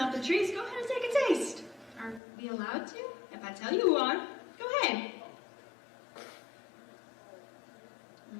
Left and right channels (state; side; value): drops out; right; at 2.2 s